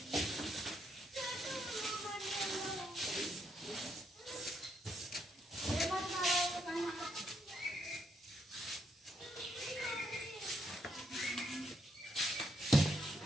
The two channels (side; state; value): both; normal; correlation 0.76